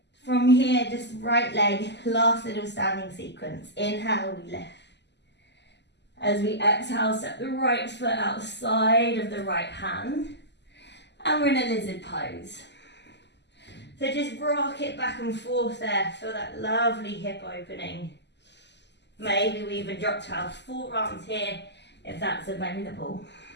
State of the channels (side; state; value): right; late; 0.50 ms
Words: From here, just right leg, last little standing sequence. Inhale, we lift. As we exhale, step the right foot outside of the right hand. And we're in a lizard pose. So just rock it back and forth there. Feel that lovely hip opening. Maybe we even drop to our forearms here if that's available.